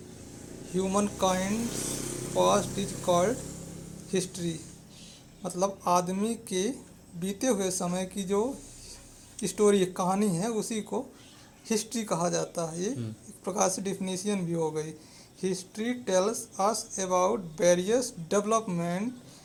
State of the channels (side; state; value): both; identical; correlation 1.00